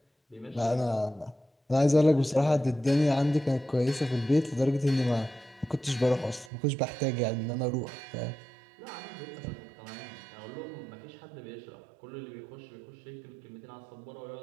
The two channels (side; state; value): left; drops out; at 6.5 s